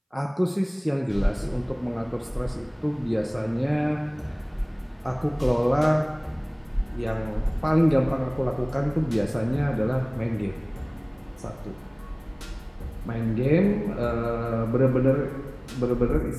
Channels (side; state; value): both; identical; correlation 1.00